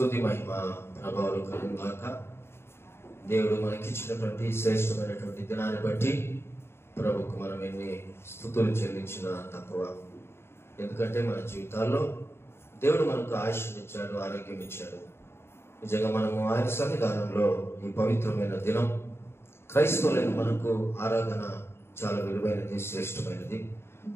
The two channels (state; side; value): late; right; 0.12 ms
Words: మహిమ ప్రభావాలు కలుగుగాక. దేవుడు మనకిచ్చినటువంటి శ్రేష్టమైనటువంటి దినాన్ని బట్టి ప్రభుకు మనం ఎన్ని స్తుతులు చెల్లించినా తక్కువ. ఎందుకంటే మన జీవితాల్లో దేవుడు మనకు ఆయుష్ని ఇచ్చాడు, ఆరోగ్యం ఇచ్చాడు. నిజంగా మనము ఆయన సన్నిధానంలో ఈ పవిత్రమైన దినం క్రైస్తవులైన మనకు ఆరాధన చాలా విలువైనది, శ్రేష్టమైనది.